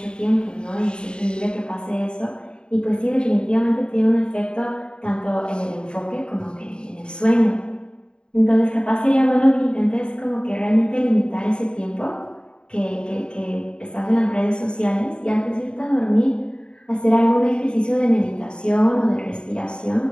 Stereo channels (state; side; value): late; right; 0.050 ms